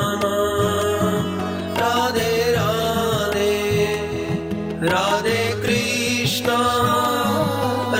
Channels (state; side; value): identical; both; correlation 1.00